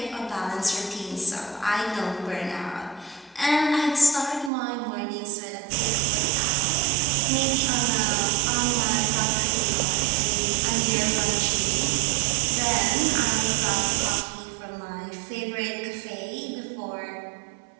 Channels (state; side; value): drops out; left; at 4.5 s